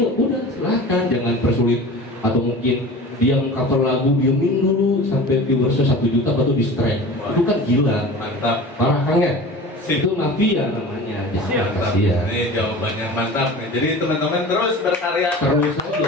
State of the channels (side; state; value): both; normal; correlation 0.37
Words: silahkan, jangan persulit. Atau mungkin dia mengcover lagu diemin dulu sampai viewersnya 1 juta baru di strike. Itu kan gila, Mantap. parah kan ya? Sip. Itu mafia namanya. Jangan Mantap. kasihan. Ini jawabannya mantap nih. Jadi teman-teman terus berkarya. Terus